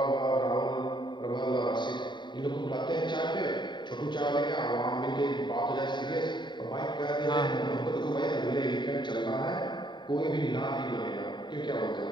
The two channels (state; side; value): late; right; 0.22 ms